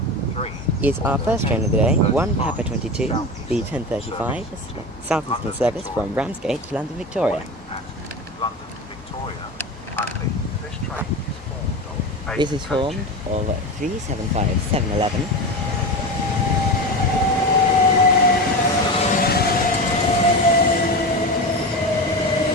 is our first train of the day, 1 Papa 22, the 10:35, Southeastern service from Ramsgate to London Victoria. London Victoria only. This train is formed of This is formed of 375 711,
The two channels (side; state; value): both; normal; correlation 0.25